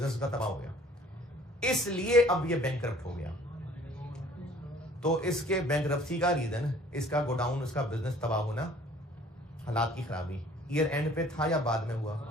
का तबाह हो गया, इसलिए अब ये बैंकरप्ट हो गया। तो इसके बैंकरप्सी का रीजन इसका गोडाउन, इसका बिजनेस तबाह होना, हालात की खराबी। ईयर एंड पे था या बाद में हुआ?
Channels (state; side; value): normal; both; correlation 0.54